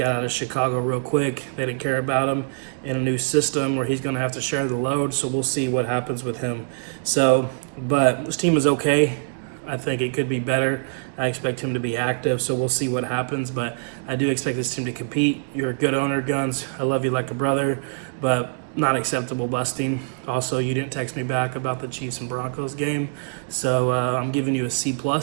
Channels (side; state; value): left; silent; digital silence